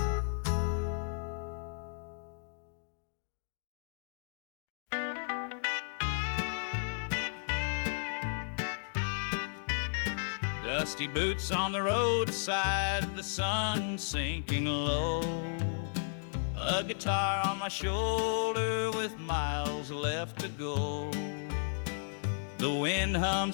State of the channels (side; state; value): right; silent; digital silence